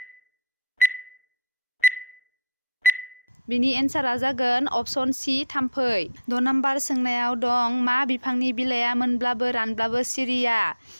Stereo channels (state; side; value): inverted; both; correlation -0.66